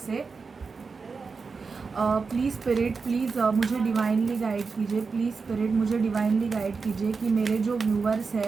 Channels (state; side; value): quieter; left; 4.8 dB